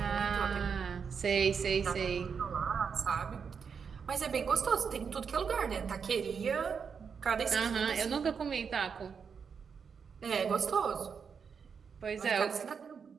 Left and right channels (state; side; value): quieter; left; 6.3 dB